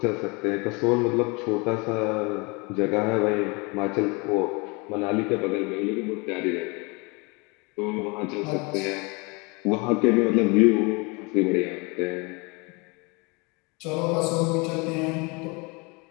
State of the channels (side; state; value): right; quieter; 28.7 dB